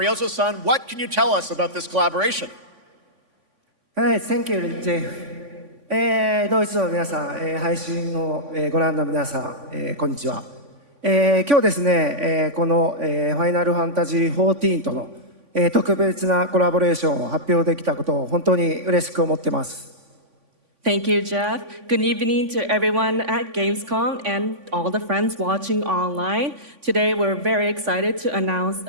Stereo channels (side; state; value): left; late; 3.5 ms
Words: what can you tell us about this collaboration? Thank you, Jeff. ドイツの皆さん、配信をご覧の皆さん、こんにちは。今日ですね、このファイナルファンタジー14との特別なコラボレーションを発表できたことを本当に嬉しく思ってます。Thank you, Jeff. Good evening to everyone at Gamescom and all the friends watching online. Today, we're very excited to announce